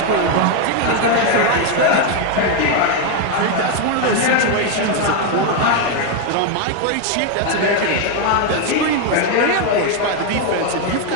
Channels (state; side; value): different; both; correlation 0.01